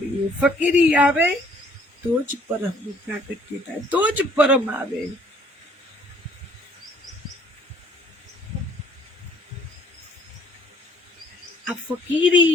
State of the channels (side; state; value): both; normal; correlation 0.60